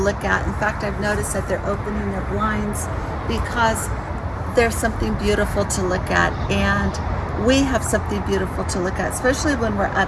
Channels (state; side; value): identical; both; correlation 1.00